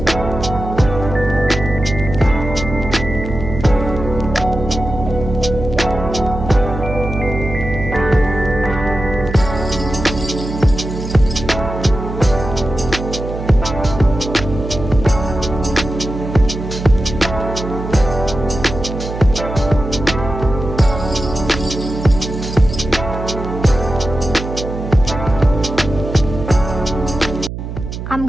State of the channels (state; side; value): noise; right; hum, 7 dB below the sound